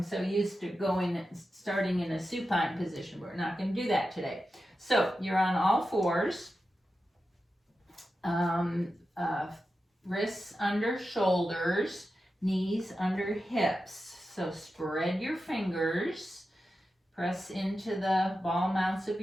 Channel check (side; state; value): both; normal; correlation 0.91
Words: so used to starting in a supine position. We're not going to do that today. So you're on all fours. Wrists under shoulders, knees under hips. So spread your fingers. Press into the ball mounts of